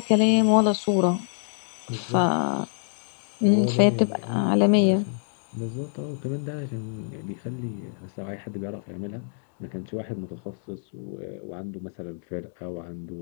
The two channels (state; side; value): silent; right; digital silence